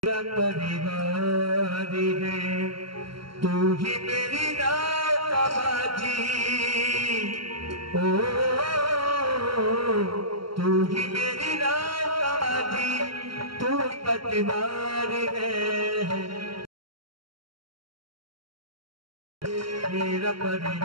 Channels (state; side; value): late; left; 0.74 ms